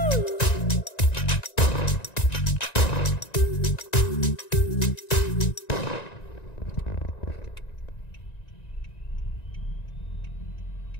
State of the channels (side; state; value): right; late; 1.9 ms